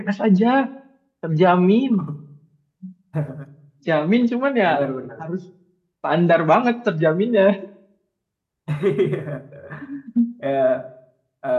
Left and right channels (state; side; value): identical; both; correlation 1.00